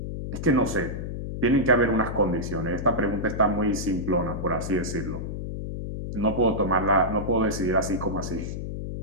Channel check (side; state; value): left; noise; hum, 5 dB below the sound